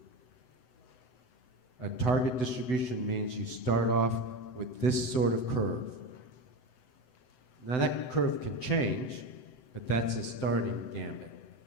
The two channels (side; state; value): right; late; 7.9 ms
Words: A target distribution means you start off with this sort of curve. Now that curve can change, but that's a starting gambit,